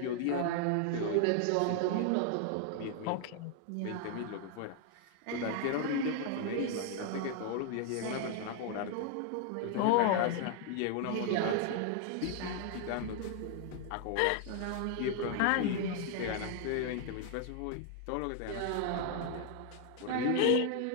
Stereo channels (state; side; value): different; both; correlation 0.00